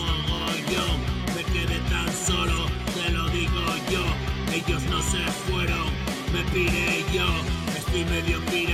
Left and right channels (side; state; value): both; identical; correlation 1.00